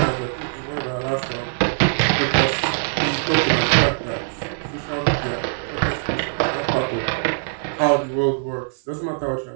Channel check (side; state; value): left; silent; 59 dB below the other